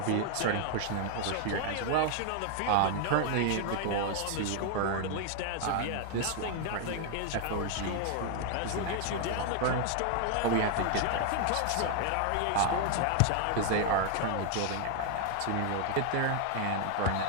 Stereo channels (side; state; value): both; different; correlation 0.00